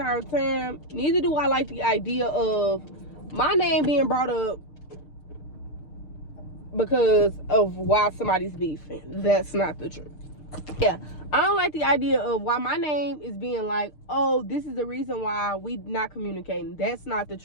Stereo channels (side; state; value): right; late; 6.6 ms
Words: time. Neither do I like the idea of my name being brought up because of why somebody's beefing. That's not the truth. Yeah, I don't like the idea of why my name is being like, oh, this is the reason why we not communicating. That's not the